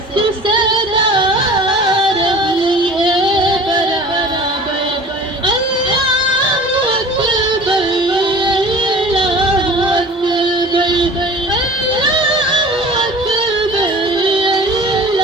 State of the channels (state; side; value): normal; both; correlation 0.42